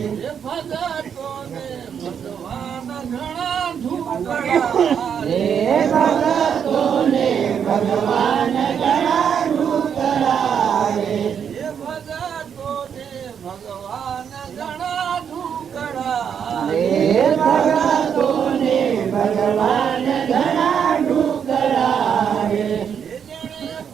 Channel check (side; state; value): left; quieter; 7.7 dB